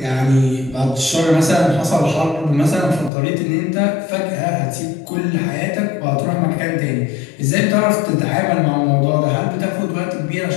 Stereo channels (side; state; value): right; drops out; at 3.1 s